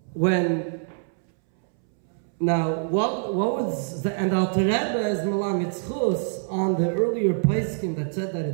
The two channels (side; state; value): left; silent; 62 dB below the other